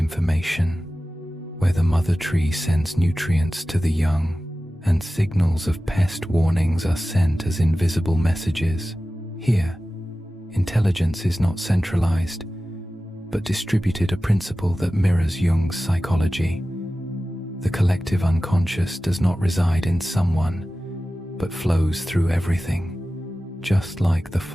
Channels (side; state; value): both; normal; correlation 0.95